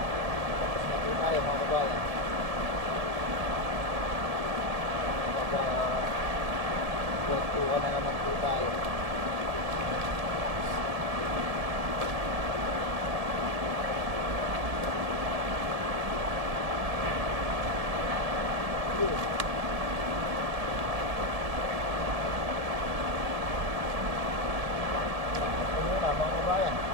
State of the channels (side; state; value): left; late; 1.8 ms